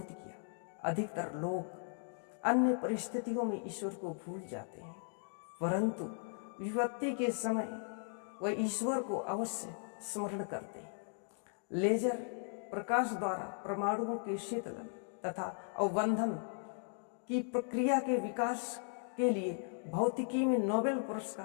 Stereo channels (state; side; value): silent; right; 53 dB below the other